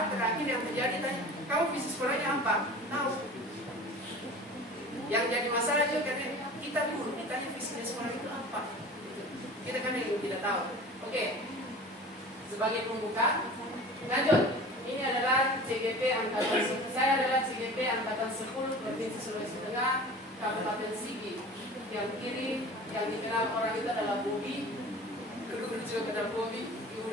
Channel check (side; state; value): both; normal; correlation 0.39